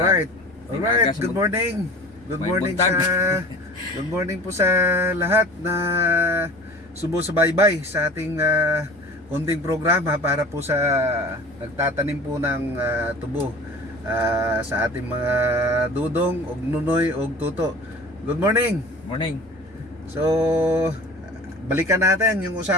Alright. Alright. Good morning. Good morning sa good morning po sa lahat na sumusubaybay sa ating konting programa para po sa nagtatanim po ng tubo sa ating mga dudong og nunoy og tuto. Good morning. Morning. So balikan natin yung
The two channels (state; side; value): normal; both; correlation 0.41